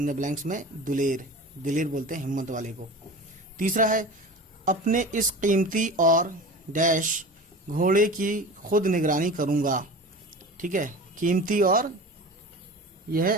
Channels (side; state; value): both; normal; correlation 0.34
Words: دا بلینکس میں دلیر. دلیر بولتے ہیں ہمت والے کو. تیسرا ہے اپنے اس قیمتی اور ڈیش گھوڑے کی خود نگرانی کروں گا. ٹھیک ہے, قیمتی اور یہ